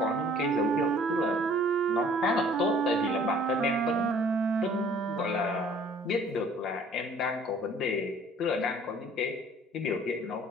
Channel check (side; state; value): both; normal; correlation 0.54